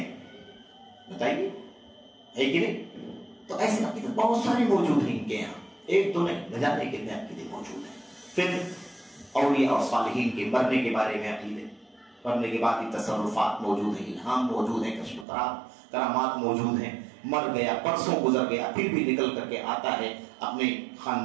بتائیے، ہے کہ نہیں؟ تو ایسے عقیدے بہت سارے موجود ہیں ان کے یہاں، ایک دو نہیں، نہ جانے کتنے عقیدے موجود ہیں. پھر اولیاء اور صالحین کے مرنے کے بارے میں عقیدے، مرنے کے بعد تصرفات موجود ہیں، الہام موجود ہیں، کشف کرامات موجود ہیں. مر گیا، پرسوں گزر گیا، پھر بھی نکل کر کے آتا ہے، اپنے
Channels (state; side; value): drops out; left; at 15.2 s